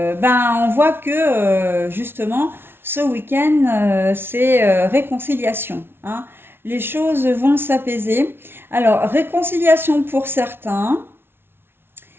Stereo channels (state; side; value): late; left; 0.11 ms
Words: ben on voit que justement ce week-end c'est réconciliation, hein. Les choses vont s'apaiser. Alors réconciliation pour certains,